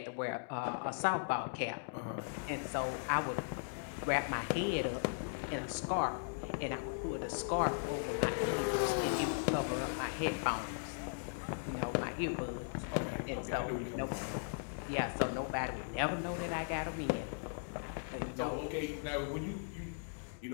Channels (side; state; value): right; silent; digital silence